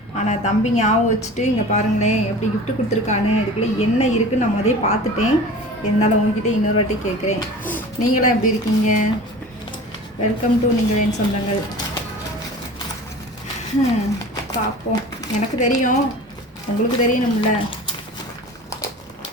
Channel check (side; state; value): both; normal; correlation 0.38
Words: ஆனால் தம்பி ஞாபகம் வச்சுட்டு இங்கே பாருங்களேன் எப்படி கிஃப்ட் கொடுத்துருக்கானு. இதுக்குள்ளே என்ன இருக்குன்னு நான் முதலே பார்த்துட்டேன். இருந்தாலும் உங்ககிட்ட இன்னொரு வாட்டி கேட்குறேன், நீங்களாம் எப்படி இருக்கீங்க? வெல்கம் டு நீங்கள் என் சொந்தங்கள். பார்ப்போம். எனக்கு தெரியும், உங்களுக்கு தெரியணும்ல.